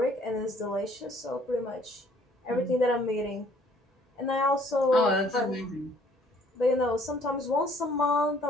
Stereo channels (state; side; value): normal; both; correlation 0.60